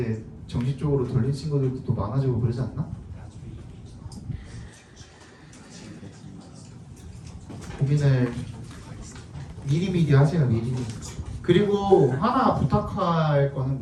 정식적으로 돌린 친구들도 또 많아지고 그러지 않나? 고민을 미리미리 하세요. 미리미리. 그리고 하나 부탁할 거는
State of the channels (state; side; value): identical; both; correlation 1.00